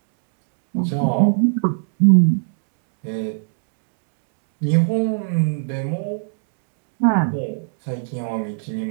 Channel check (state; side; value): silent; left; digital silence